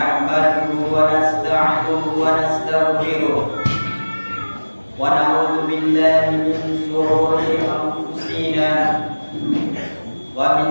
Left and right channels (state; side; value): inverted; both; correlation -1.00